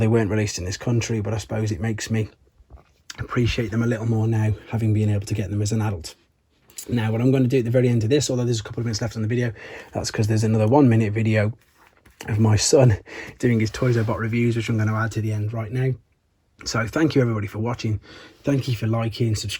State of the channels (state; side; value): identical; both; correlation 1.00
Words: weren't released in this country, but I suppose it makes me appreciate them a little more now, having been able to get them as an adult. Now what I'm going to do at the very end of this, although there's a couple of minutes left on the video, that's because there's another 1-minute video of my son doing his Toys I Bought reviews, which I'm going to add to the end right now. So thank you everybody for watching. Thank you for liking,